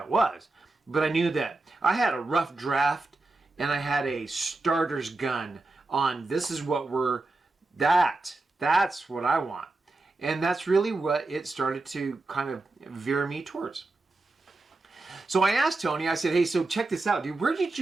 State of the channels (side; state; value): left; quieter; 3.2 dB